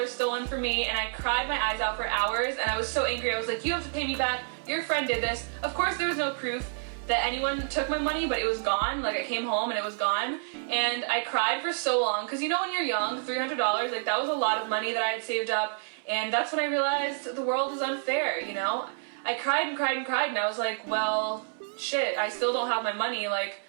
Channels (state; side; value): silent; left; 58 dB below the other